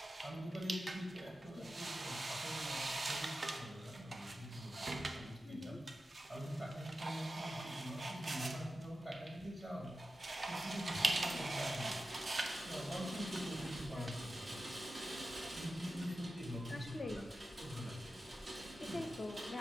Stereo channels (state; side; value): normal; both; correlation 0.93